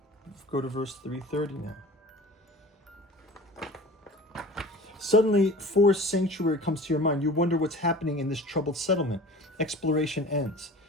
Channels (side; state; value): both; normal; correlation 0.40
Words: Go to verse 330 now. Suddenly, Forest Sanctuary comes to your mind. You wonder what's happening in this troubled settlement. Exploration ends.